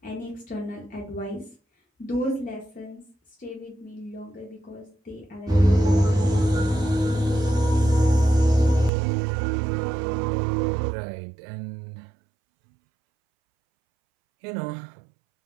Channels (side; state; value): left; drops out; at 8.9 s